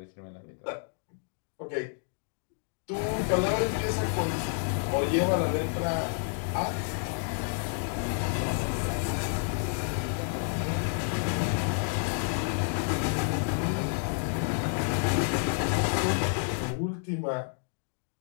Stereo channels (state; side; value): silent; right; 58 dB below the other